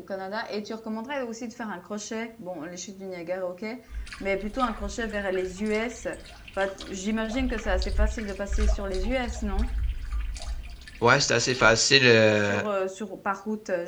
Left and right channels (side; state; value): both; identical; correlation 1.00